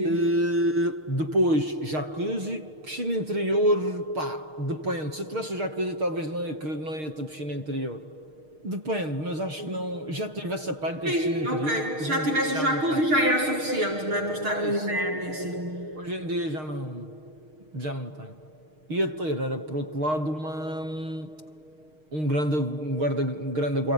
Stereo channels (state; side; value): late; left; 6.5 ms